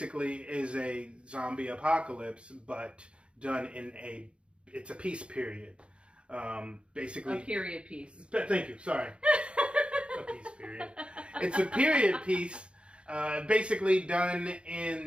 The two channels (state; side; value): late; left; 0.058 ms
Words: is a zombie apocalypse, but done in it's a peace period. Basically, a period piece. Thank you. Sorry, a peace period. It's a period piece, basically done